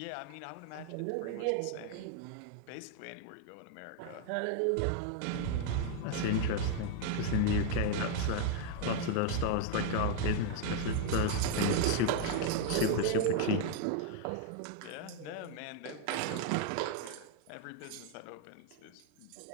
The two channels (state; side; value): different; both; correlation 0.00